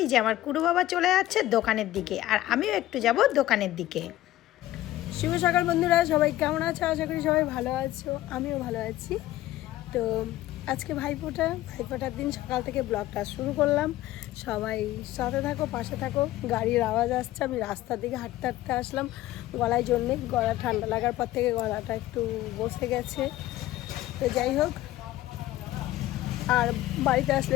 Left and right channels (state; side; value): quieter; right; 15.3 dB